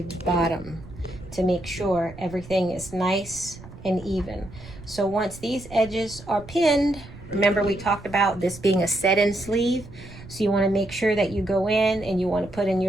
bottom to make sure everything is nice and even. So once these edges are pinned, remember we talked about this being a set-in sleeve, so you want to make sure that you go in and you want to put in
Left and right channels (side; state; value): right; noise; rumble, 17 dB below the sound